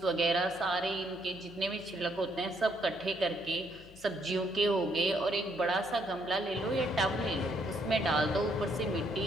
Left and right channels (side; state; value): left; noise; hum, 23 dB below the sound